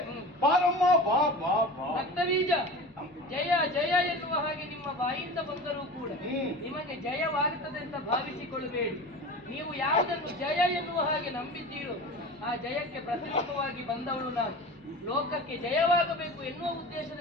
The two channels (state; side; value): normal; both; correlation 0.33